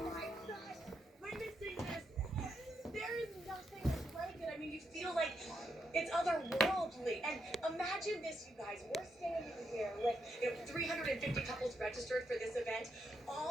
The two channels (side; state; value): both; normal; correlation 0.81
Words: Witnessing this, there is nothing like it. I mean, you feel like it's otherworldly. And imagine this, you guys. We're standing here with 350 couples registered for this event.